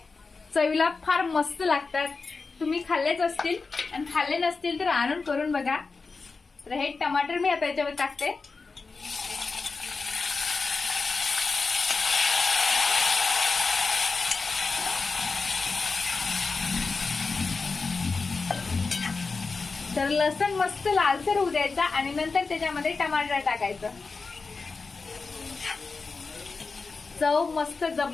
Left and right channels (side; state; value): right; quieter; 4.3 dB